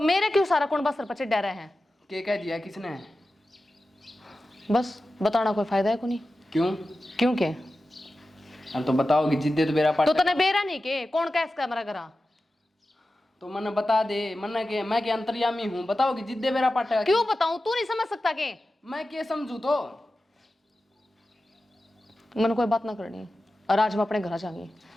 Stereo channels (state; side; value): normal; both; correlation 0.94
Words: मेरे क्यों सारा कौन बस सर पर डरा है? के कह दिया किसने? बस बताना कोई फायदा है को नहीं। क्यों? क्यों के? अरे तो बताओगी जिद्दे तो मेरा पाट। तो तने बेरा नहीं के कौन कह इसका मेरा घरा? तो मन्ने बता दे, मन्ने के मैं के अंतर्यामी हूँ, बताओगी जिद्दे मेरा पाट। क्यों बताऊं, तू नहीं समझ सकता के? मैं क्या समझू तो? मैंने कोई बात ना करनी और आज मैं अपने घर जाऊंगी।